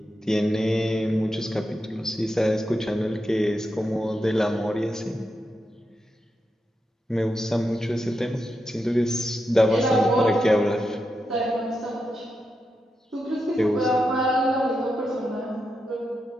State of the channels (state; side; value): normal; both; correlation 0.86